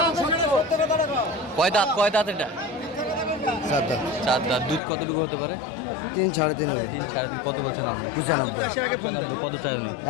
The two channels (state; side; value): drops out; right; at 4.8 s